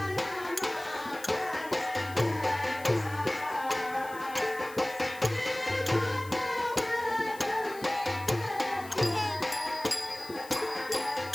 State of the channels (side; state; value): left; noise; hiss, 18 dB below the sound